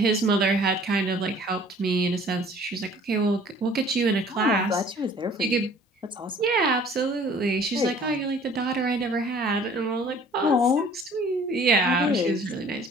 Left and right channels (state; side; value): normal; both; correlation 0.52